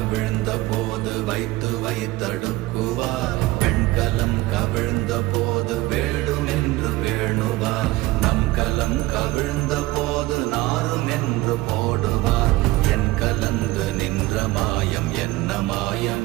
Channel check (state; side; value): quieter; left; 18.9 dB